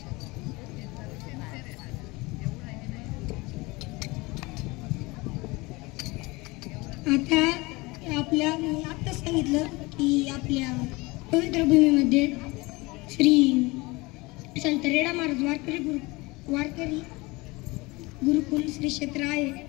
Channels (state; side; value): quieter; right; 23.6 dB